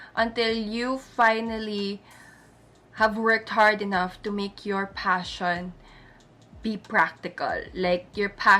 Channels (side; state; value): both; identical; correlation 1.00